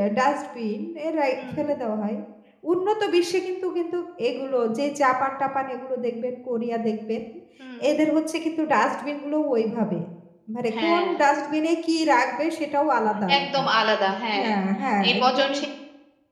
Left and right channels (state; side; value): identical; both; correlation 1.00